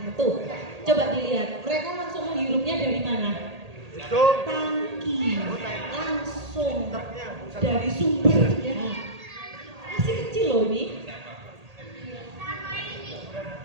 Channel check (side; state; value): left; late; 1.8 ms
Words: itu. Coba dilihat, mereka langsung menghirupnya dari mana? Tangki, langsung dari sumbernya. Masih kecil loh ini.